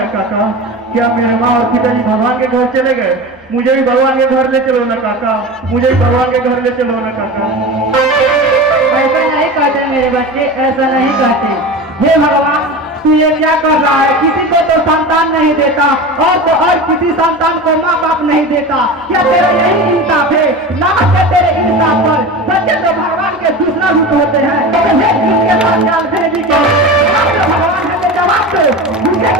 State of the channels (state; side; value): noise; left; hum, 30 dB below the sound